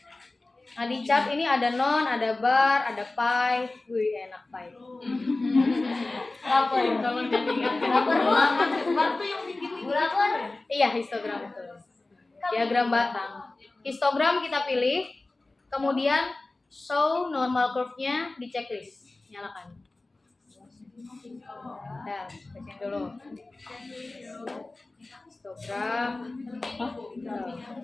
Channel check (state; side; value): quieter; right; 3.1 dB